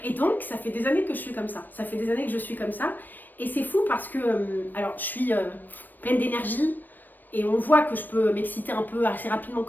Et donc, ça fait des années que je suis comme ça. Ça fait des années que je suis comme ça. Et c'est fou parce que, alors, je suis pleine d'énergie et on voit que je peux m'exciter un peu assez rapidement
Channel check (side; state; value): right; late; 0.090 ms